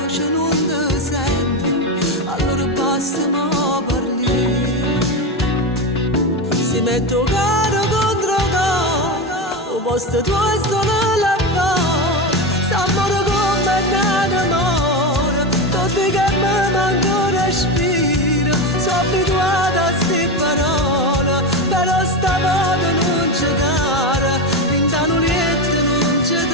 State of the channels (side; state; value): both; normal; correlation 0.16